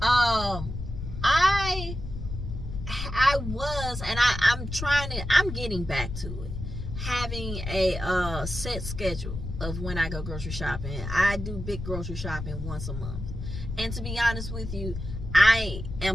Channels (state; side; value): noise; left; rumble, 7 dB below the sound